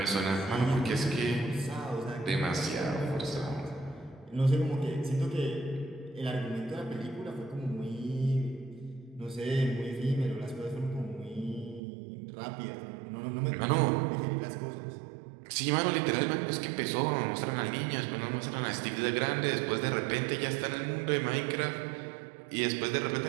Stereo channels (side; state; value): left; drops out; at 11.8 s